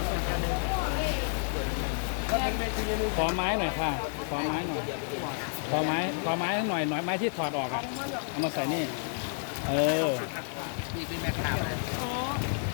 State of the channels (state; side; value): silent; right; 57 dB below the other